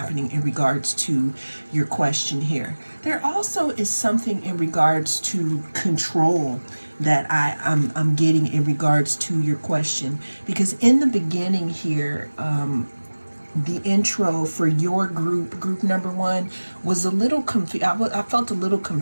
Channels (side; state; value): both; inverted; correlation -1.00